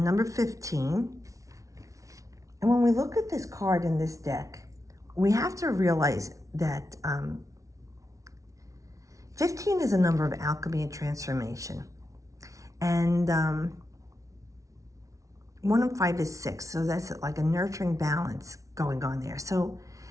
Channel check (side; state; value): left; late; 0.16 ms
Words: 15. And when we look at this card in this deck, we have to realize that 15 is a number of alchemy and transformation. And 1 and 5 is 6. So that's like a nurturing balance going on there. So